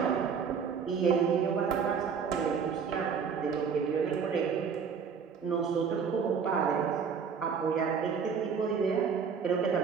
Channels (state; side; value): quieter; left; 6.3 dB